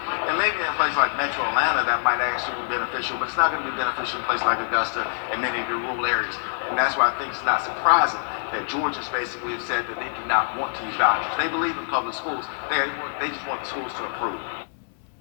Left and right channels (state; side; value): silent; right; 62 dB below the other